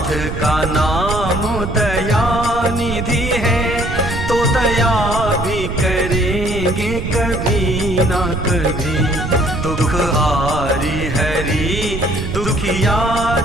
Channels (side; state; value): right; noise; rumble, 5 dB below the sound